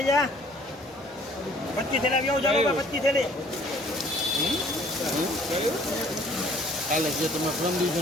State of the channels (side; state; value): both; normal; correlation 0.56